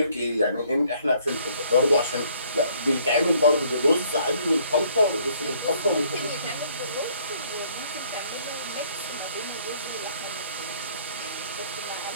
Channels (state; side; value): inverted; both; correlation -0.62